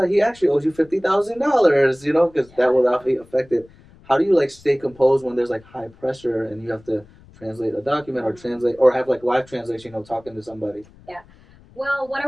He actually owes you $50,000. You know, because that will not be affected. How do you like stay composed when there's like high pressure and you have to translate a document or translate or have like live translation? You know, talking to somebody. Yeah. Well, what I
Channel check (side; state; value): left; noise; rumble, 26 dB below the sound